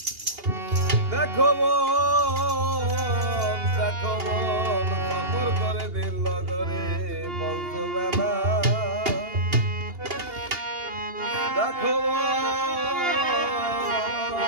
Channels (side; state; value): left; late; 2.8 ms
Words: দেখো মন সফর করে দিল নগরে পঞ্চবেলা দেখো